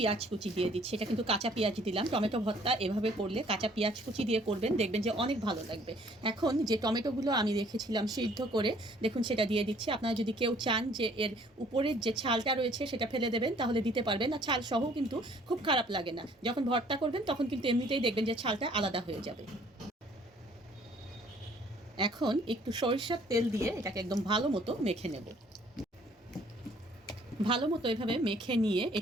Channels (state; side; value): normal; both; correlation 0.59